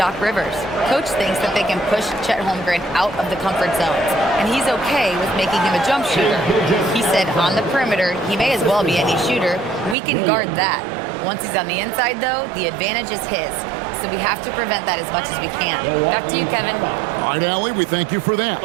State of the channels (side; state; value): left; drops out; at 10.0 s